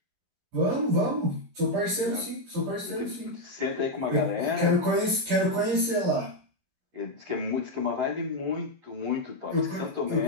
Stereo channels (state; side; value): late; left; 15 ms